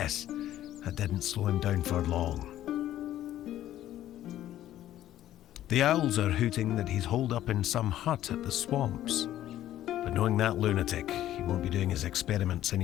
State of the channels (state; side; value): quieter; right; 12.9 dB